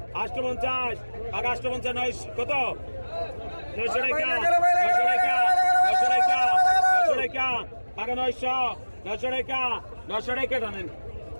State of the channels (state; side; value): inverted; both; correlation -1.00